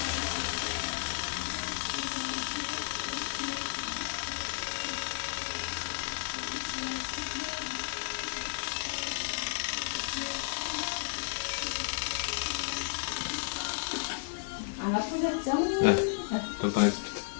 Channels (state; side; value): silent; right; 56 dB below the other